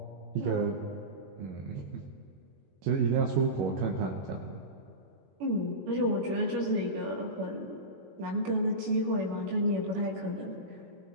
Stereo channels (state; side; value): late; left; 21 ms